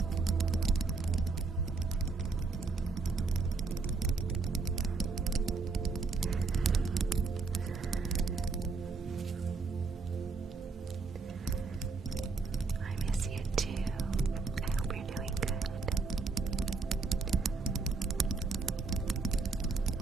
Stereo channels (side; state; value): left; quieter; 4.2 dB